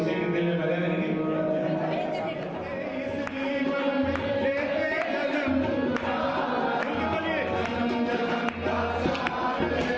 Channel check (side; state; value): right; noise; rumble, 29 dB below the sound